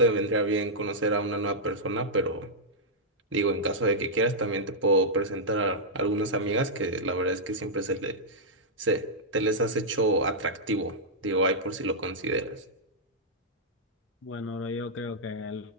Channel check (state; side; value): normal; both; correlation -0.08